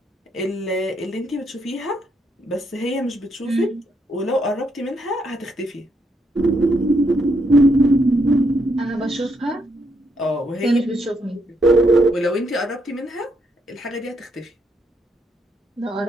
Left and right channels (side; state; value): both; normal; correlation 0.76